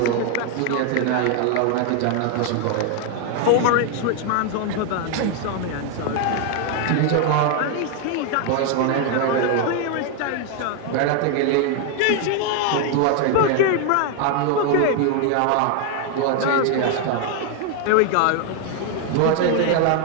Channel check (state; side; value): different; both; correlation 0.01